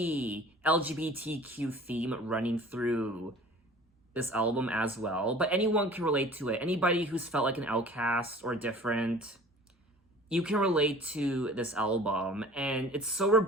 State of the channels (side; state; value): both; normal; correlation 0.46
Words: LGBTQ theme running through this album as well, but anyone can relate to it. Anybody who's felt like an outcast or different, you can relate to this album. And it's so